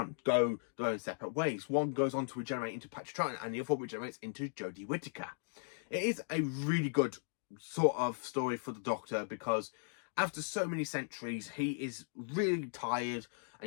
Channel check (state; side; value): silent; right; digital silence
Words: their own separate ways. One goes on to regenerate into Patrick Troughton, and the other one regenerates into Jodie Whittaker. It is a really good sort of story for the Doctor, because after so many centuries, he is really tired